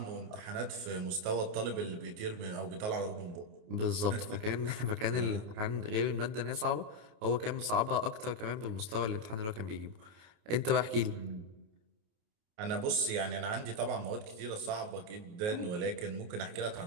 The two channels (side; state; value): left; late; 28 ms